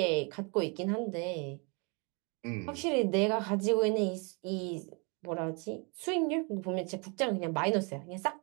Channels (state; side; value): quieter; left; 33.1 dB